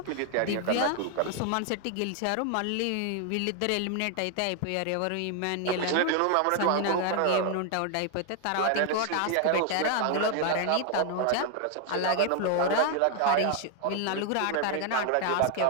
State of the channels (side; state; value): both; different; correlation 0.00